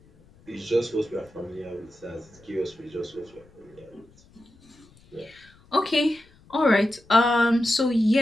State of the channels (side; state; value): left; noise; rumble, 28 dB below the sound